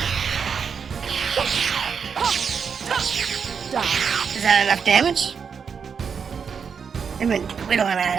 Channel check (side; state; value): left; quieter; 6.4 dB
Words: Is that enough damage? I mean, we don't want